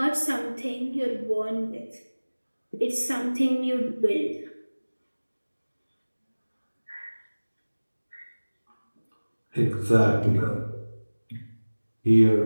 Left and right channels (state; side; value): inverted; both; correlation -1.00